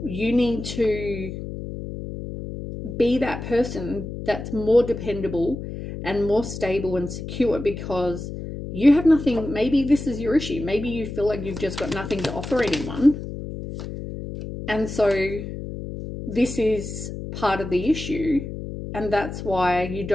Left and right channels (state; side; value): noise; left; hum, 8 dB below the sound